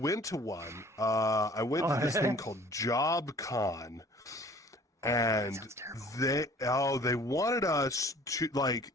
to one. I went to this thing called JobCon, and they wanted us to like.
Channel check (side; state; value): both; normal; correlation 0.51